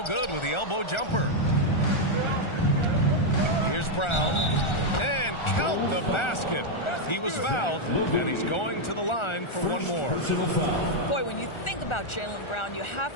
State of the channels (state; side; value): late; right; 1.4 ms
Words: good with the elbow jumper. Here's Brown. And count the basket. He was fouled, and he's going to the line for one more. Boy, when you think about Jaylen Brown, you